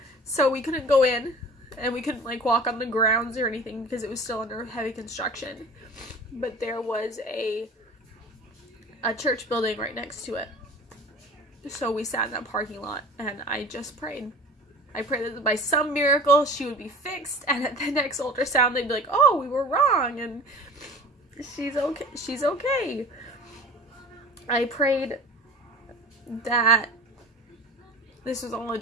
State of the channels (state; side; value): normal; both; correlation 0.40